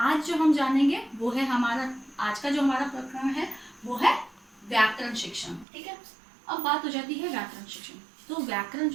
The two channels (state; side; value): drops out; left; at 5.7 s